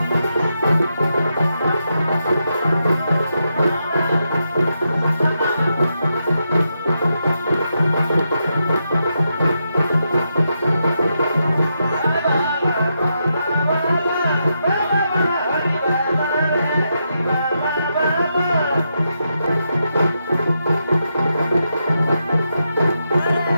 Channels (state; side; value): inverted; both; correlation -0.83